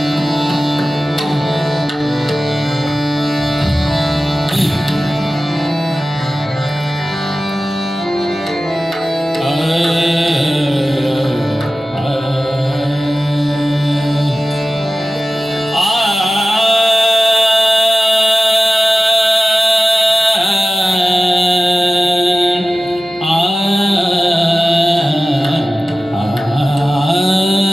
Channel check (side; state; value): both; normal; correlation 0.95